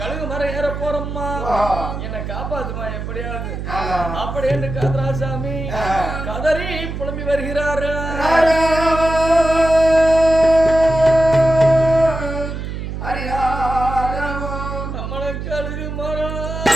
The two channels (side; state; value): right; noise; hum, 6 dB below the sound